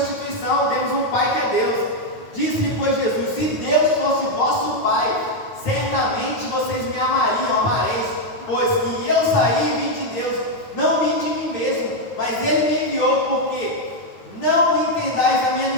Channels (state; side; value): late; right; 9.4 ms